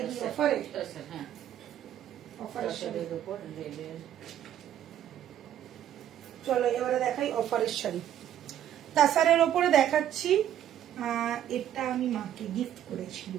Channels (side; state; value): left; quieter; 10.9 dB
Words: কি অফারে? হ্যাঁ, অফারের উপর রেডের। চলো এবারে দেখাই অফারের শাড়ি। তাসারের ওপরে দেখাচ্ছি, এটা আমি মাকে গিফট